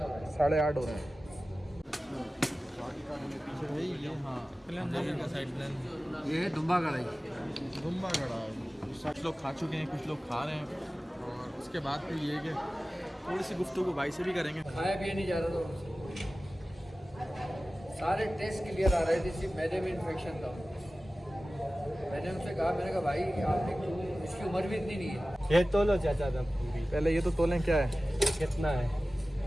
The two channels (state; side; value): normal; both; correlation 0.96